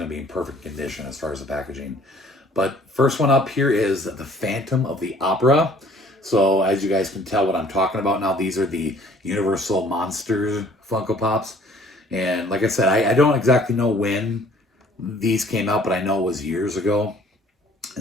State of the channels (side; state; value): both; normal; correlation 0.56